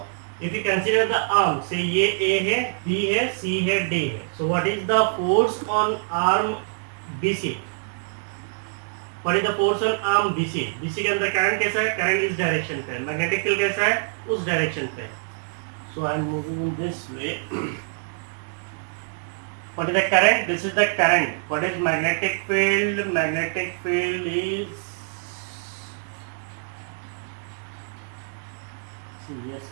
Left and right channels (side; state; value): left; silent; 62 dB below the other